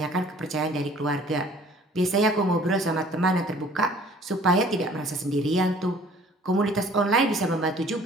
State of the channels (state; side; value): normal; both; correlation 0.53